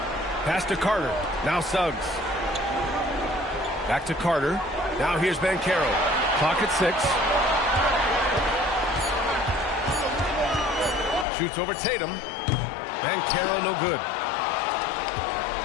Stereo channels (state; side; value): drops out; right; at 11.2 s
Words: Pass to Carter. Now Suggs. Back to Carter. Now here's Banchero. Clock at 6. Shoots over Tatum. Banchero no good.